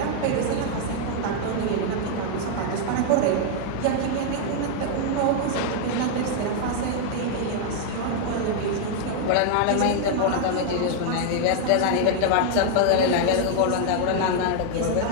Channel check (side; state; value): both; different; correlation 0.00